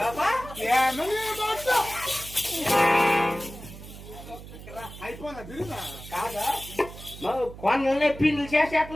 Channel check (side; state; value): right; noise; hum, 15 dB below the sound